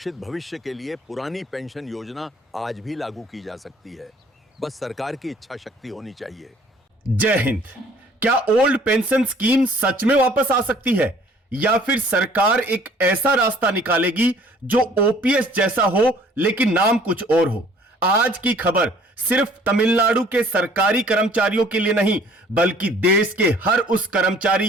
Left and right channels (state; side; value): normal; both; correlation 0.55